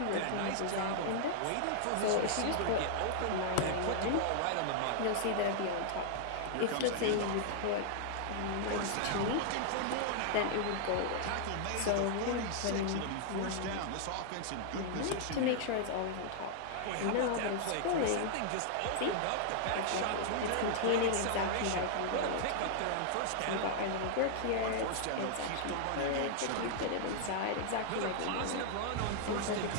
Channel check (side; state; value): both; different; correlation -0.01